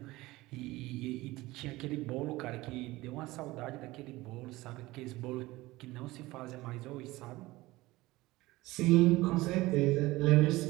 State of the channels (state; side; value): quieter; left; 19.4 dB